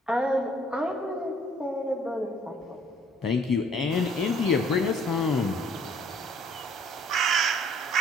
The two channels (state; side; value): normal; both; correlation 0.59